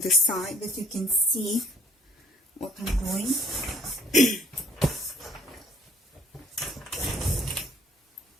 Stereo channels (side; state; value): both; normal; correlation 0.59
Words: the side that you can see what I'm doing.